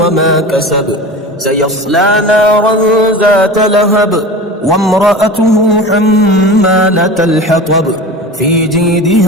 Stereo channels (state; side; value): normal; both; correlation 0.33